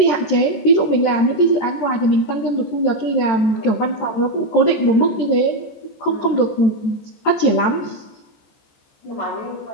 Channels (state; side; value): late; right; 14 ms